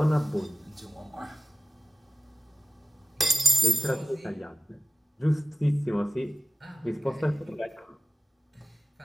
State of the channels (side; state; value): both; normal; correlation 0.94